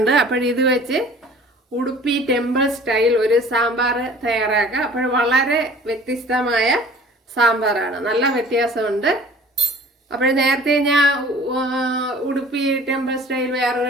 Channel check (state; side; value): normal; both; correlation 0.48